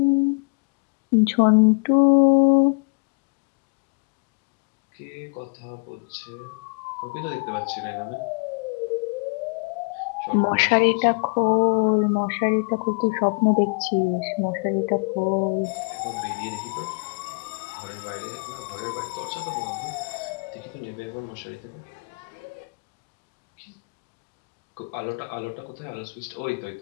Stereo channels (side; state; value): right; quieter; 34.6 dB